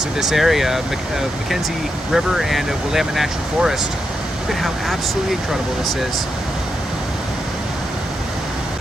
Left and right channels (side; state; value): both; normal; correlation 0.85